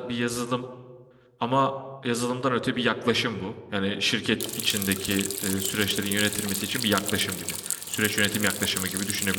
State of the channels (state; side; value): identical; both; correlation 1.00